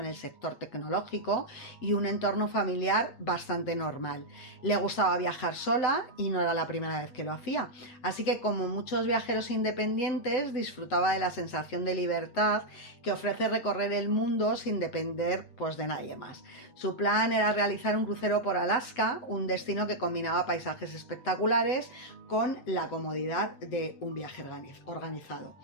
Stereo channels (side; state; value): right; late; 7.9 ms